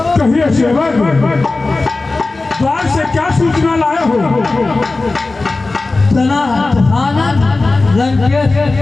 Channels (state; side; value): quieter; right; 3.4 dB